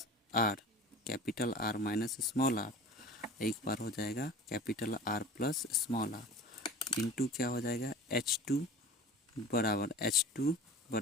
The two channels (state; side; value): normal; both; correlation 0.40